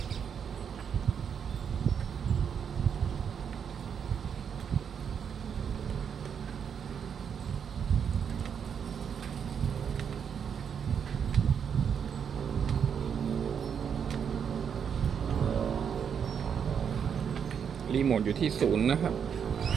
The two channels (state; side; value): quieter; left; 7.4 dB